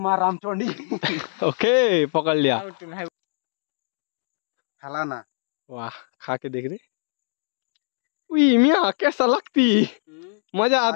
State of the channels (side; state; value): right; silent; digital silence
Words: रामचंडी। ओके पकड़ लिया। हलाना। वाह खा के देख रहे। उई मियाँ कैसा लगती, मजा